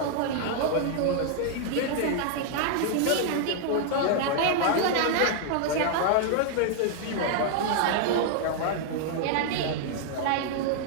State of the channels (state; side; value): different; both; correlation 0.00